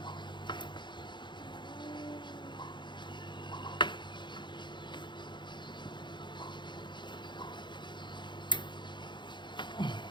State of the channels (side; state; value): right; late; 0.22 ms